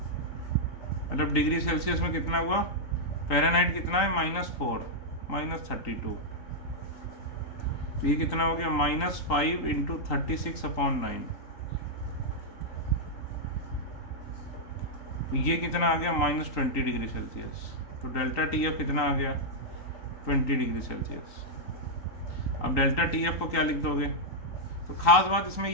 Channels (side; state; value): right; late; 3.8 ms